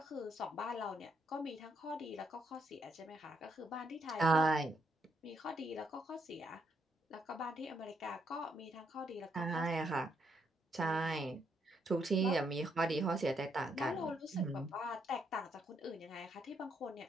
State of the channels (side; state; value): both; normal; correlation 0.76